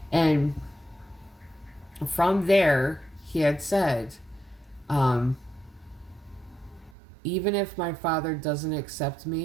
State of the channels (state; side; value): drops out; left; at 7.0 s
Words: and from there he had said, even if my father doesn't accept